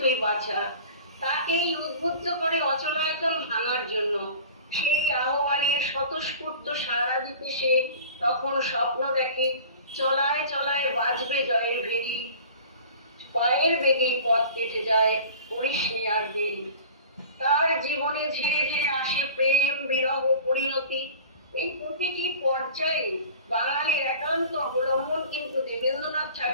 বাঁচা, তাকেই উদ্বুদ্ধ করে অচলায়তন ভাঙার জন্য। সেই আহ্বানের স্বতঃস্ফূর্ত সাড়া দিতে সে তখন স্বপ্ন দেখে, চলায় চলায় বাজবে জয়ের ভেরি, পায়ের বেগেই পথ কেটে যায়, করিস নি আর দেরি। তার জীবনে ধীরে ধীরে আসে প্রেম, বিরহ, পরিণতি। এই প্রতিটি পর্যায়ে বাঙালির একান্ত অবলম্বন কিন্তু দেবেন্দ্রনাথ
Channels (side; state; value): both; inverted; correlation -0.41